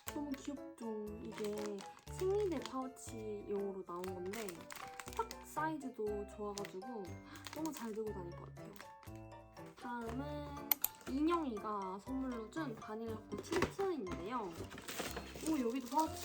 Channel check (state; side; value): identical; both; correlation 1.00